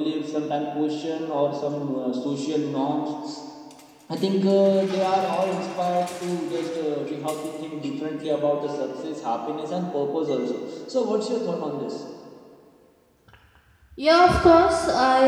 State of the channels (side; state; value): both; identical; correlation 1.00